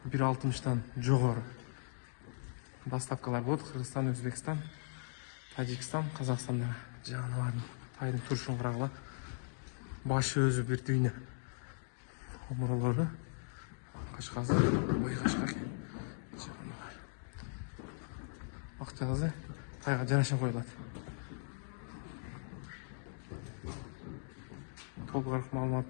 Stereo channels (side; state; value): right; silent; digital silence